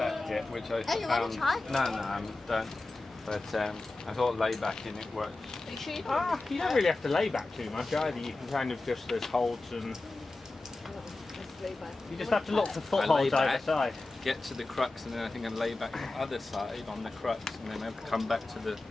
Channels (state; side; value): quieter; right; 3.1 dB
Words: it, which I found. No, I don't. But I thought laybacking it works. You don't really have to lay back too much either. You can kind of just, there's holds and you just have to look for footholds either side. Get to the crux, and then I think I lay back the other side on the crux, and then I come back to the